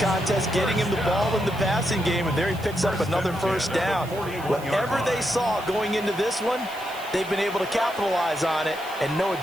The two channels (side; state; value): right; noise; hiss, 19 dB below the sound